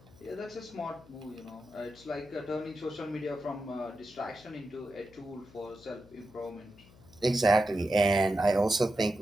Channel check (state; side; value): noise; left; hum, 24 dB below the sound